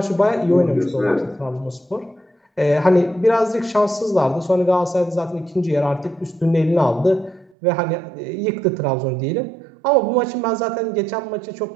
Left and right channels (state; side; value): drops out; left; at 7.5 s